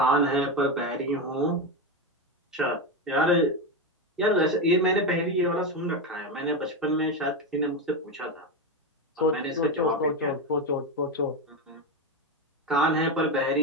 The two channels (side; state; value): both; normal; correlation 0.13